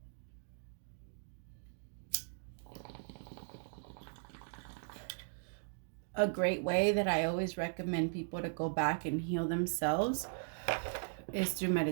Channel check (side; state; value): left; silent; digital silence